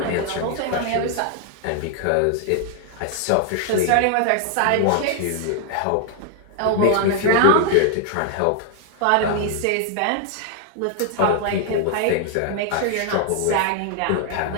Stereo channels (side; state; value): both; different; correlation 0.00